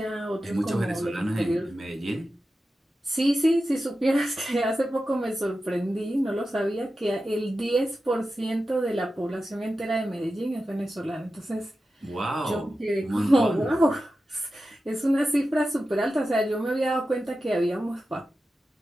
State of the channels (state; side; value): normal; both; correlation 0.92